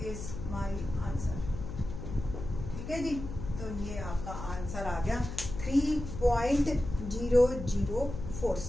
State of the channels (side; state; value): left; noise; hum, 8 dB below the sound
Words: is my answer. ठीक है जी, तो ये आपका आंसर आ गया